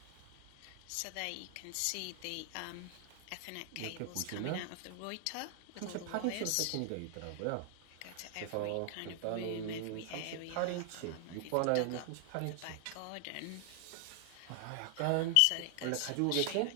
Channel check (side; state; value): both; different; correlation 0.00